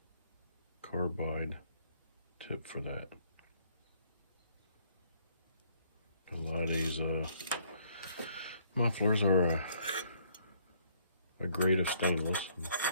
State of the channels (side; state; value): both; inverted; correlation -0.65